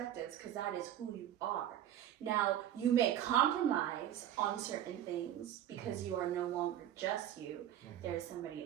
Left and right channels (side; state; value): left; quieter; 11.4 dB